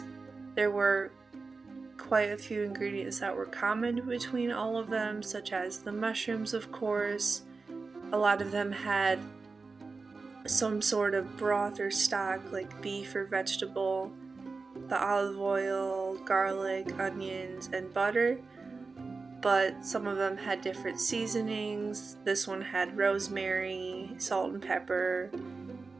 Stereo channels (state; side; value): quieter; left; 4.2 dB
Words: there were quite a few ingredients that were common between all of them, such as the mushrooms, of course. A lot of them had some sort of broth or stock, like beef or vegetable, the olive oil, garlic, onions, and butter, but some of them had different seasonings. This one had rosemary, salt and pepper,